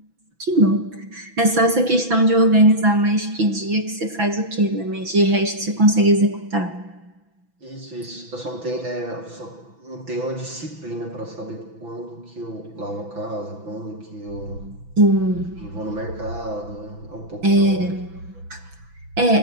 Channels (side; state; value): left; late; 6.0 ms